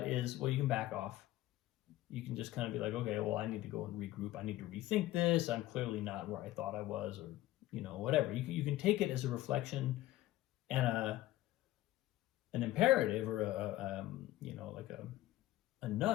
is, well, you can back off. You can just kind of be like, okay, well, I need to go and regroup. I need to rethink this. I'm clearly not where I thought I was, or whatever. You can take it as a reflection and an imperative, or a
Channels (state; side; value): quieter; right; 15.4 dB